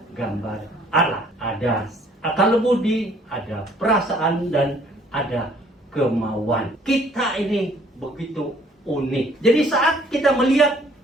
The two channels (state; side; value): normal; both; correlation 0.60